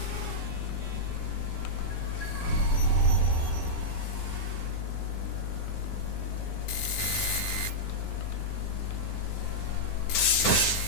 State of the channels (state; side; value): late; right; 9.7 ms